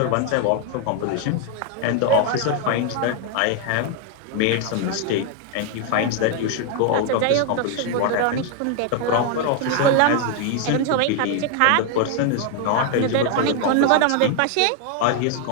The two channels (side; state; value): both; different; correlation 0.01